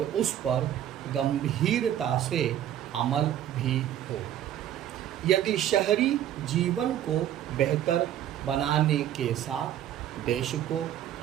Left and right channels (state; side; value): quieter; left; 11.3 dB